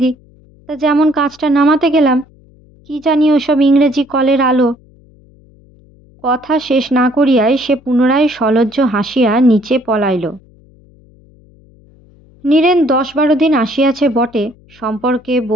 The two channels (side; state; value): left; noise; hum, 28 dB below the sound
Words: দিই, তা যেমন কাজটা নামাতে গেলাম, কি জানি ওসব ইংরেজি কলের আলো। কথা শেষ না করিয়াই সে পুনরায় সলজ্জ হাসিয়া নিচে পলাইল। নীরেন 10-12 দিন আসিয়াছে বটে, সম্পর্কে